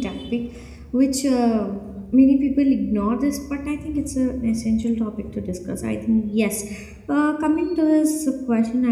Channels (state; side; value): identical; both; correlation 1.00